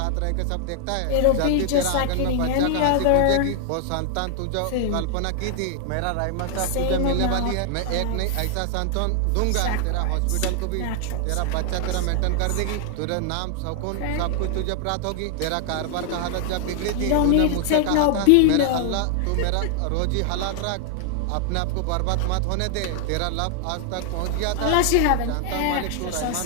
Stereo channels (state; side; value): different; both; correlation 0.00